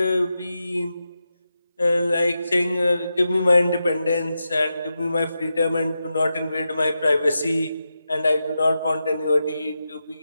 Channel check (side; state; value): both; inverted; correlation -0.89